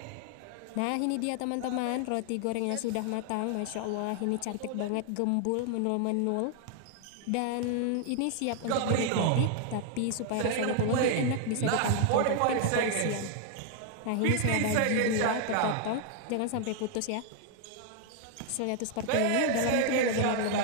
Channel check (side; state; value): both; different; correlation 0.00